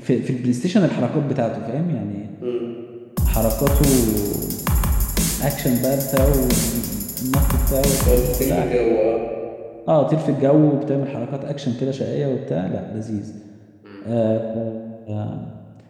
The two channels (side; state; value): both; identical; correlation 1.00